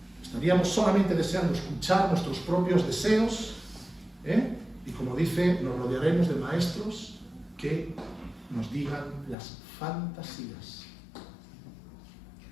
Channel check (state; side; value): drops out; right; at 9.3 s